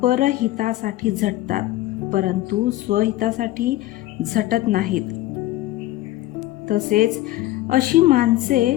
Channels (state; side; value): quieter; right; 16.2 dB